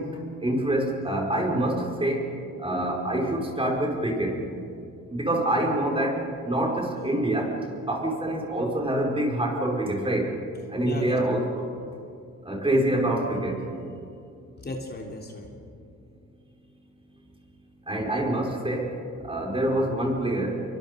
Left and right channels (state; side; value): normal; both; correlation 0.52